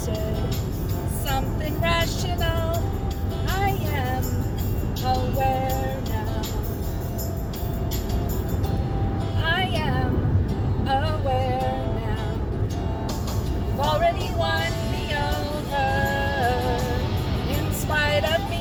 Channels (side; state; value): both; identical; correlation 1.00